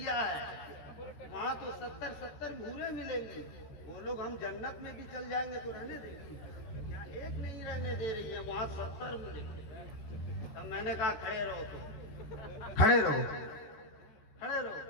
है। वहाँ तो 70 भूरे मिलेंगी, वो लोग हम जन्नत में भी चल जाएंगे तो रहने देंगी। यहाँ एक नहीं रहने दे रही है, वहाँ 70 मिलेंगे। तो मैंने कहा खड़े रहो, तो खड़े रहो।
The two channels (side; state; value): right; late; 14 ms